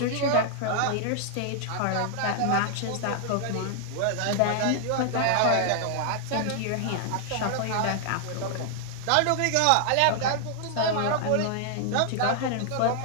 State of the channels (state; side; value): different; both; correlation 0.00